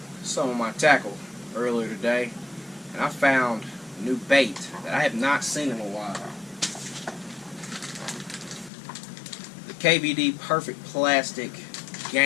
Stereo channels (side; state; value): right; drops out; at 8.7 s